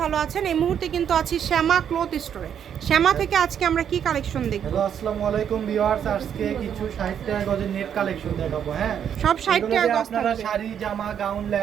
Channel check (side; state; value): left; quieter; 8.7 dB